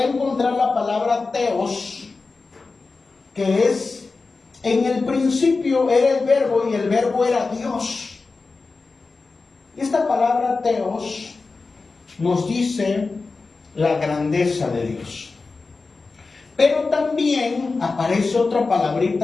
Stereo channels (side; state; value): right; quieter; 4.0 dB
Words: encontrar la palabra Theos, que es, en el principio era el verbo y el verbo era Dios. Esta palabra Theos nos dice la grandeza de Dios. Pero también aparece otra